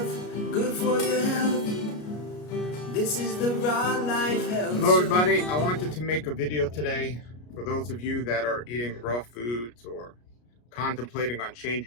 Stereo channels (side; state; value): right; late; 33 ms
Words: good for your health. This is the Raw Life Health Hello Show. everybody, I wanted to make a video today for those of you that are eating raw foods or contemplating on